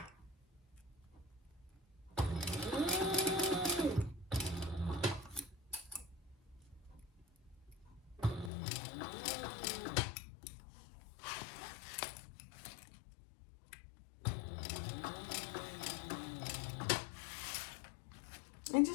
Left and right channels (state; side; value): drops out; right; at 8.5 s